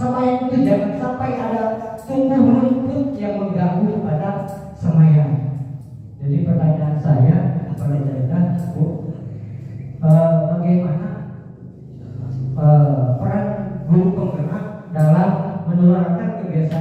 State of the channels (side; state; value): both; identical; correlation 1.00